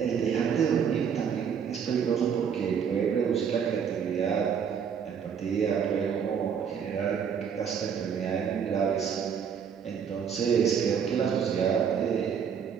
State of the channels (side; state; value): left; quieter; 7.4 dB